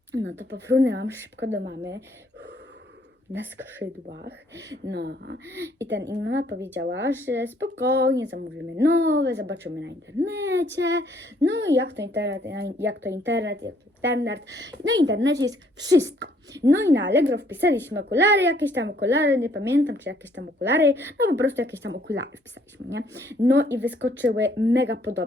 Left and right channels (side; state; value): both; normal; correlation 0.65